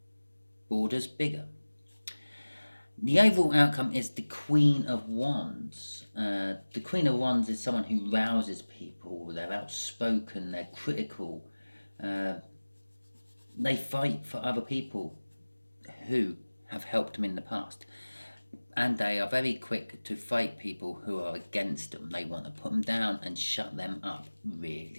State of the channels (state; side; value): inverted; both; correlation -1.00